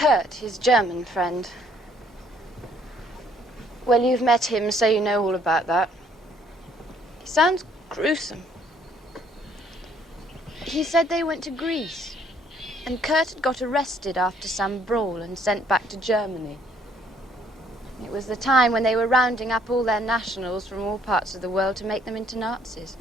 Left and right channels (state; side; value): normal; both; correlation 0.64